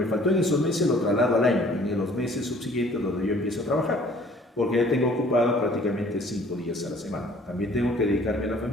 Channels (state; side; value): normal; both; correlation 0.55